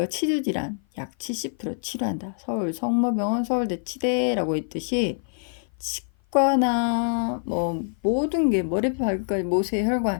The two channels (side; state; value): right; silent; 55 dB below the other